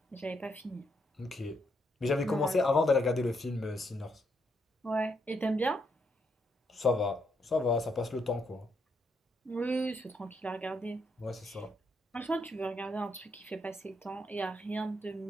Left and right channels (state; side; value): normal; both; correlation 0.77